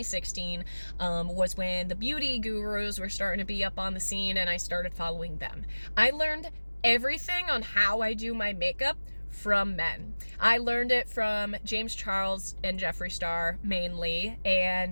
was when the beauty gurus were starting to be up on the scene, and I started following them. I learned everything on how I do my makeup from men. I learned it from James Charles and Jeffree Star mainly,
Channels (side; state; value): both; inverted; correlation -1.00